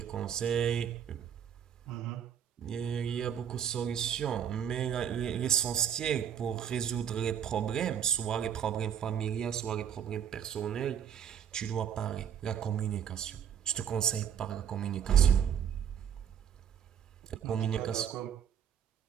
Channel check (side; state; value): left; quieter; 8.7 dB